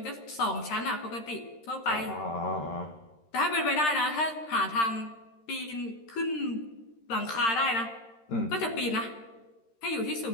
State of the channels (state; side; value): late; right; 13 ms